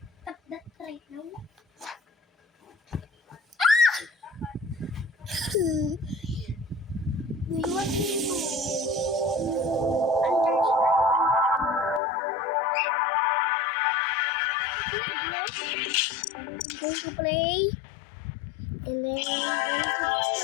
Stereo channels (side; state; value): right; drops out; at 12.0 s